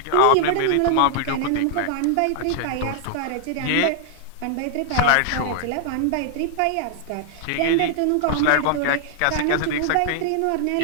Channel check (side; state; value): both; different; correlation 0.00